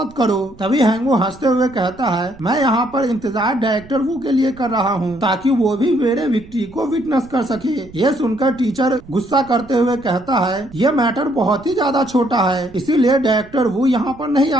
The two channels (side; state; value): right; noise; rumble, 22 dB below the sound